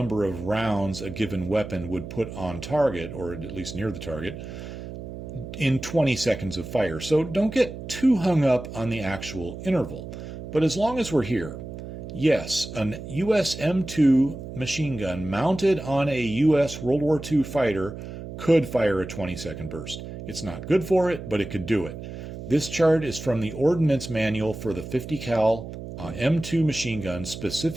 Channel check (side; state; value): right; noise; hum, 10 dB below the sound